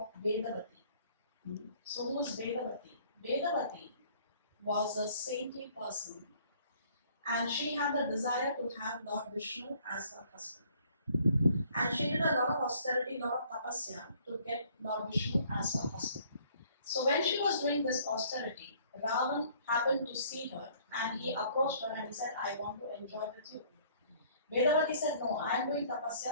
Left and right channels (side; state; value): both; inverted; correlation -0.59